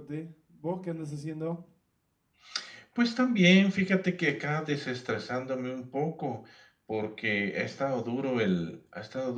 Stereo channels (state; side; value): identical; both; correlation 1.00